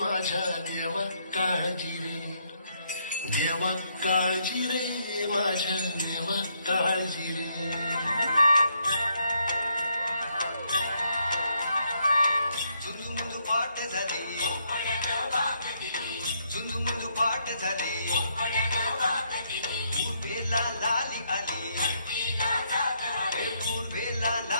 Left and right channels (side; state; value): both; inverted; correlation -0.73